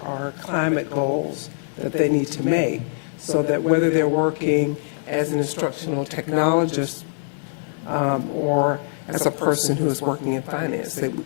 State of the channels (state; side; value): silent; right; digital silence